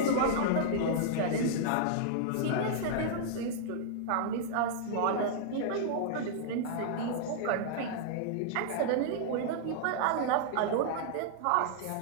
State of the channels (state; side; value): different; both; correlation -0.01